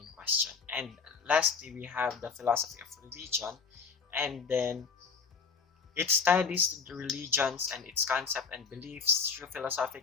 question. And lastly, we have the philosophy of religion, and then it studies the religions and its concept and beliefs through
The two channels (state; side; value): quieter; right; 5.4 dB